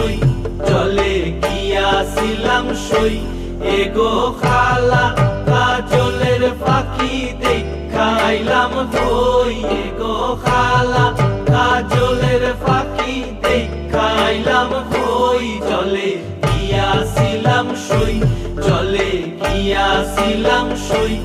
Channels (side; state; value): both; identical; correlation 1.00